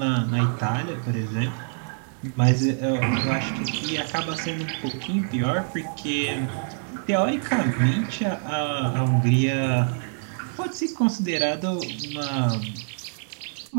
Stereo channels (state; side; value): silent; left; digital silence